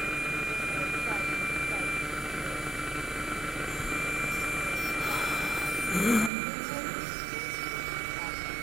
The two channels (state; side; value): drops out; left; at 6.3 s